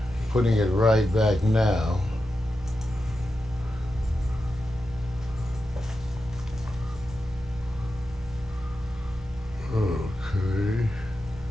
Putting it right back now. Okay.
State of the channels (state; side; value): normal; both; correlation 0.90